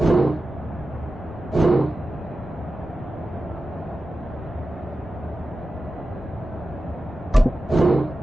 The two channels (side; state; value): both; normal; correlation 0.93